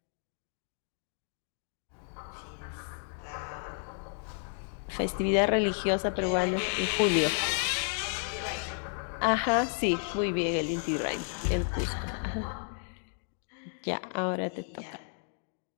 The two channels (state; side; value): silent; right; 55 dB below the other